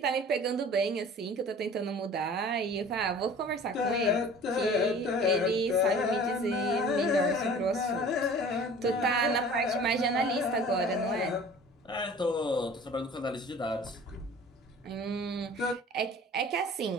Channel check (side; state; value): both; normal; correlation 0.45